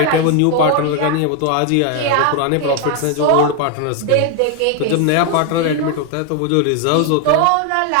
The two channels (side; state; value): both; different; correlation 0.01